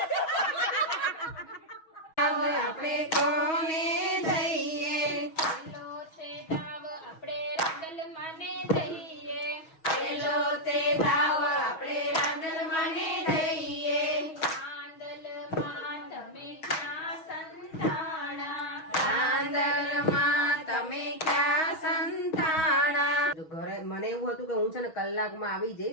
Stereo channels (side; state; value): right; late; 6.3 ms